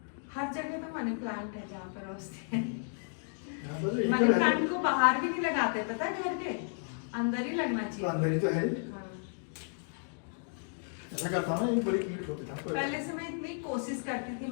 हर जगह तो मनी प्लांट है जहाँ पर रोजते हैं। मनी मनी प्लांट को बाहर भी नहीं लगाते, पता है, घर के अंदर ही लगना चाहिए। अंदर ही तो है। हाँ। ऐसा करता ना, एक बड़ी कीट होती था। पहले से मैं इतनी कोशिश करती थी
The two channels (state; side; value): silent; right; 56 dB below the other